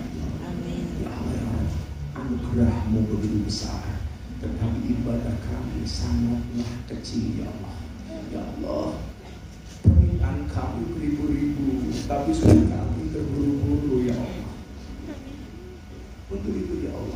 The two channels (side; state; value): both; identical; correlation 1.00